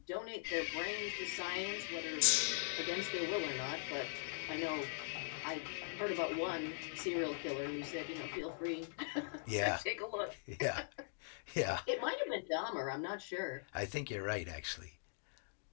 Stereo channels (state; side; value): silent; right; digital silence